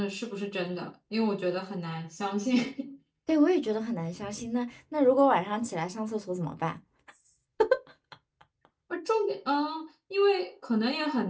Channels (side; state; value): both; identical; correlation 1.00